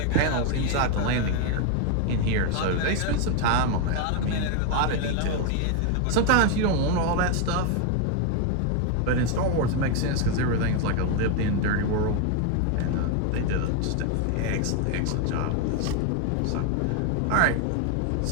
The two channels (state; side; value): different; both; correlation 0.01